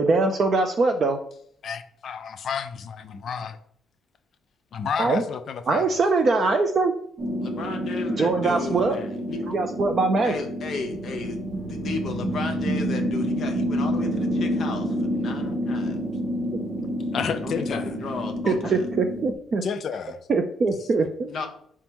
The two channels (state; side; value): normal; both; correlation 0.71